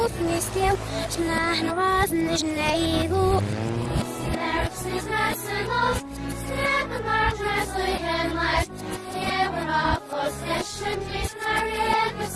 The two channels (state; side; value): identical; both; correlation 1.00